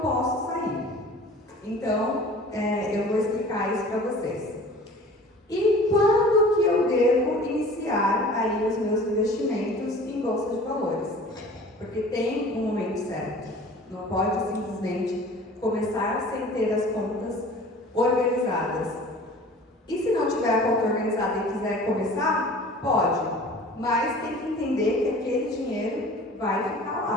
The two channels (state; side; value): normal; both; correlation 0.44